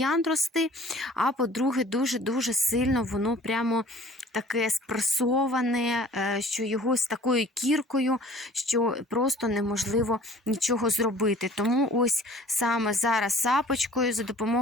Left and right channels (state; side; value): normal; both; correlation 0.50